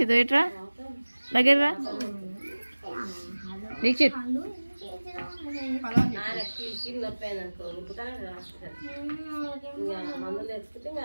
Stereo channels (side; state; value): both; inverted; correlation -1.00